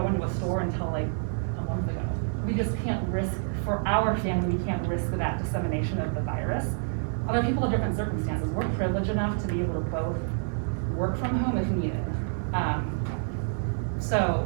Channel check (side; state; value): left; silent; digital silence